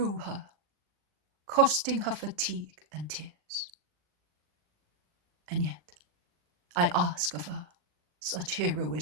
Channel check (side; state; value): left; late; 40 ms